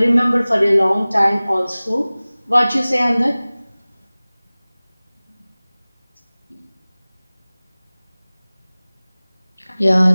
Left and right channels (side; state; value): both; inverted; correlation -0.99